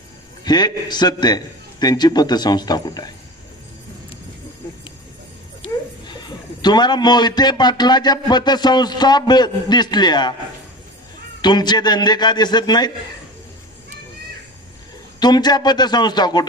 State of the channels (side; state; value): both; normal; correlation 0.34